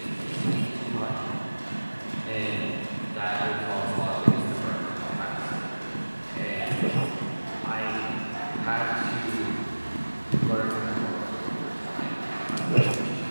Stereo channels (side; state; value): both; inverted; correlation -1.00